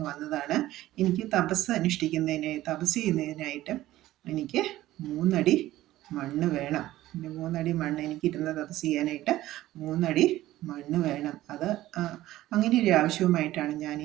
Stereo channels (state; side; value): quieter; left; 15.3 dB